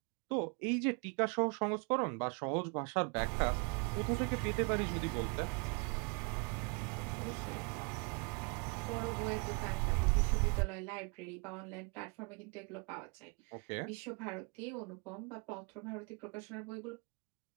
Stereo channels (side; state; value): left; quieter; 33.5 dB